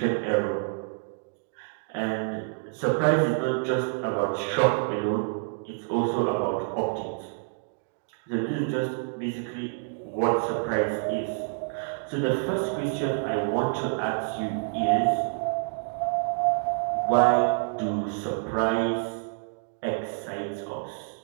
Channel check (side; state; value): left; silent; digital silence